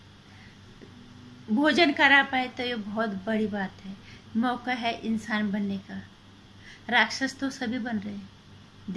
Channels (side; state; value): both; identical; correlation 1.00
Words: भोजन करा पाए तो ये बहुत बड़ी बात है। मौका है इंसान बनने का। राक्षस तो सभी बन रहे हैं,